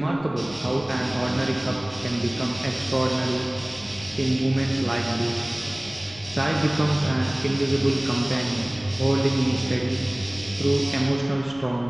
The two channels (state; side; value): noise; left; rumble, 21 dB below the sound